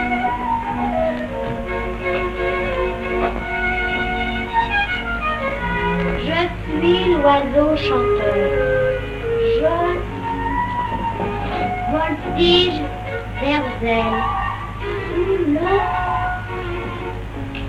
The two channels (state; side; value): identical; both; correlation 1.00